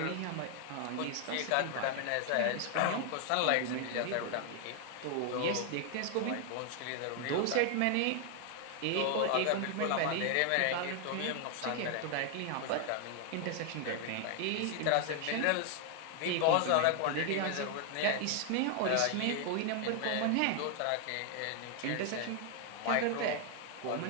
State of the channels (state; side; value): different; both; correlation 0.00